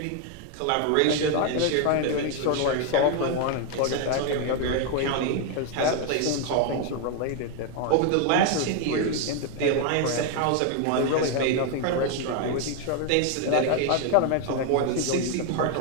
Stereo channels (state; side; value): different; both; correlation 0.01